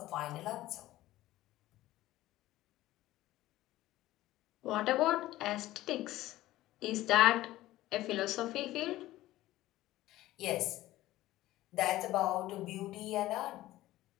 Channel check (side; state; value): right; quieter; 15.9 dB